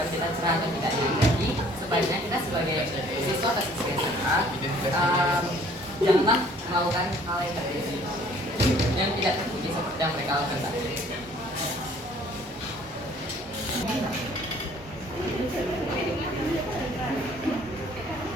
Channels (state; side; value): normal; both; correlation 0.57